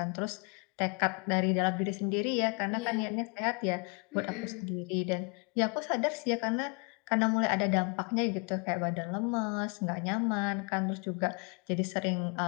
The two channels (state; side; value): quieter; right; 35.1 dB